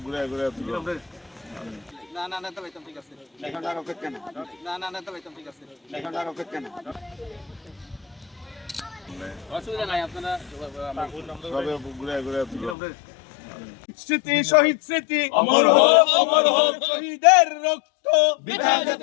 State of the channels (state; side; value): drops out; right; at 12.8 s